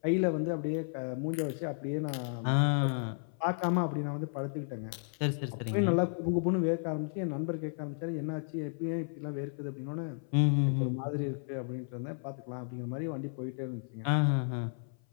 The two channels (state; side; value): silent; right; 56 dB below the other